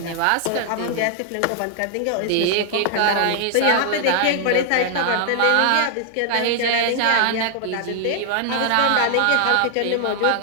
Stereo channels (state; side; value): different; both; correlation 0.00